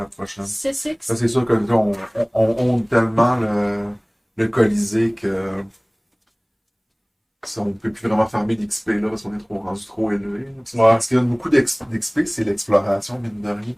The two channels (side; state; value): both; identical; correlation 1.00